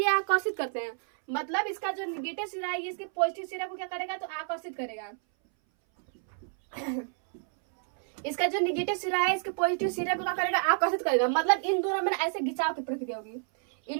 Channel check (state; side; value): silent; left; 58 dB below the other